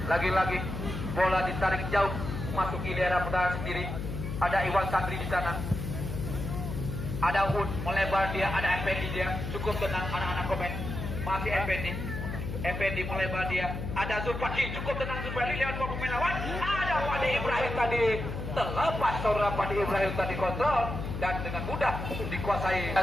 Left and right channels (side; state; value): left; noise; hum, 5 dB below the sound